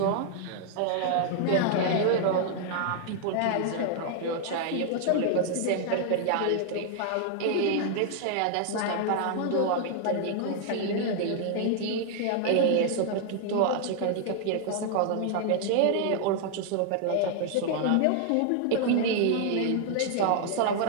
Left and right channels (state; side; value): different; both; correlation 0.00